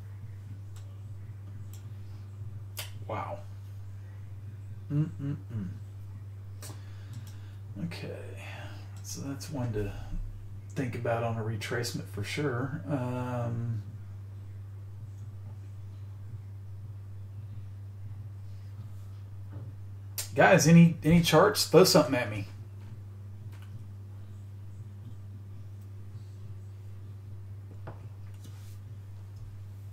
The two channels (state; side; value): identical; both; correlation 1.00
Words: Okay. So that's one to think about on a retracement for sure. Guys, any charts? Throw something at me.